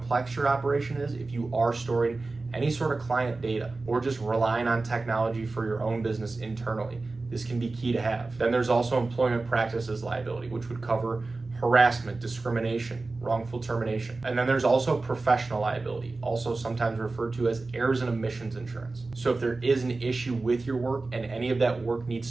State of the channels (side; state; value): left; quieter; 3.5 dB